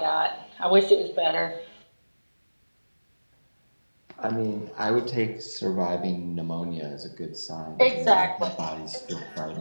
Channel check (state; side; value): inverted; both; correlation -1.00